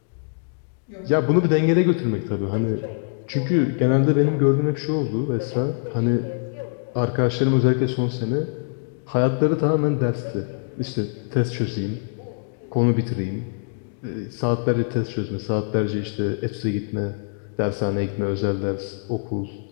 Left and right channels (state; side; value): silent; right; digital silence